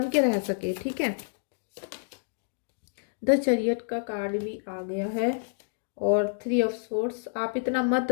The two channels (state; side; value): silent; right; digital silence